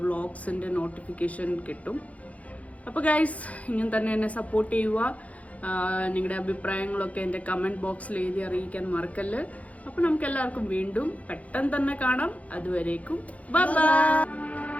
വ്ളോഗ്സിൻ്റെ നോട്ടിഫിക്കേഷൻ കിട്ടും. അപ്പോൾ ഗൈസ്, ഇങ്ങനെ തന്നെ എന്നെ സപ്പോർട്ട് ചെയ്യുക. നിങ്ങളുടെ അഭിപ്രായങ്ങളൊക്കെ എൻ്റെ കമൻറ്റ് ബോക്സിൽ എഴുതി അറിയിക്കാൻ മറക്കല്ല്. അപ്പോൾ നമുക്ക് എല്ലാവർക്കും വീണ്ടും പെട്ടെന്ന് തന്നെ കാണാം. അതുവരേക്കും ബൈ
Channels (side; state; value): right; late; 0.067 ms